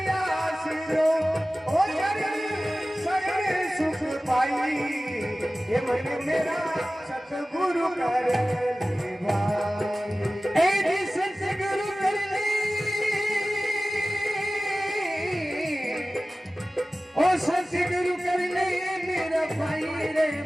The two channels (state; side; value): normal; both; correlation 0.96